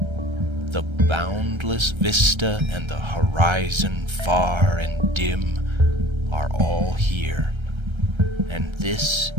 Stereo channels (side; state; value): left; late; 1.3 ms